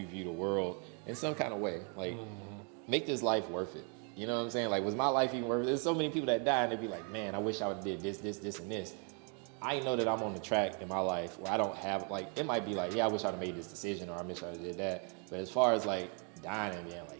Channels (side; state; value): left; quieter; 38.8 dB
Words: view the world in some kind of way. Make this life worth it. You know what I'm saying? Like, was my life even worth it? There's so many people that die and they be like, man, I wish I would have did this, this, this, and this. I know that I'm on the track in my life where I don't have, like, it might be like, yeah, I wish I'd have made this decision or I wish I would have did that. But as far as like dying and being